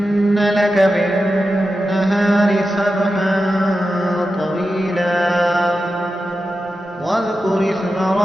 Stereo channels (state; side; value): normal; both; correlation 0.91